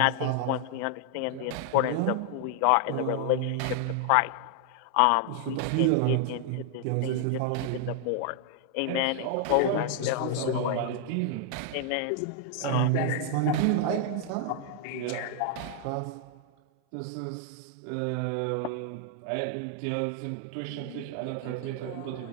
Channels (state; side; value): different; both; correlation 0.00